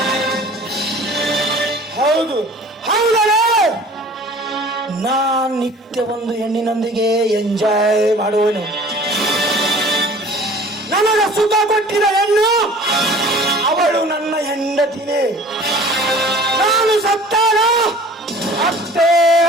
ಹೌದು ಹೌದಲ್ಲ, ನಾನ್ ನಿತ್ಯ ಒಂದು ಹೆಣ್ಣಿನೊಂದಿಗೆ ಎಂಜಾಯ್ ಮಾಡುವನು. ನನಗ ಸುಖ ಕೊಟ್ಟಿದ ಹೆಣ್ಣು ಅವಳು ನನ್ನ ಹೆಂಡತಿನೇ. ನಾನು ಸತ್ತಾನ ಅಷ್ಟೇ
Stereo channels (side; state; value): both; normal; correlation 0.46